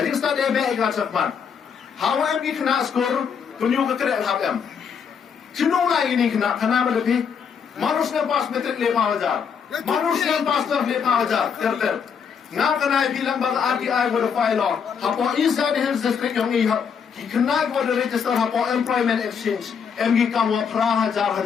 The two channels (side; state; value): right; quieter; 6.8 dB